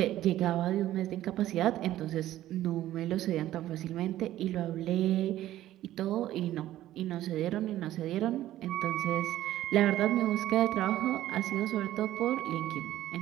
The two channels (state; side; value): quieter; left; 13.9 dB